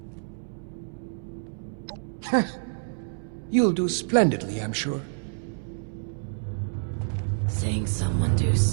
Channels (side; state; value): left; silent; 60 dB below the other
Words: You'll do splendidly, I'm sure. Seeing someone do